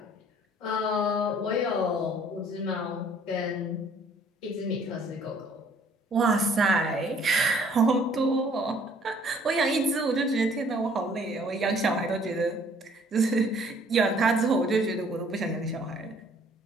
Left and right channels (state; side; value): normal; both; correlation 0.59